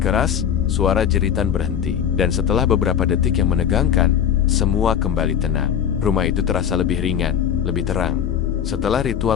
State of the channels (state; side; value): quieter; right; 8.9 dB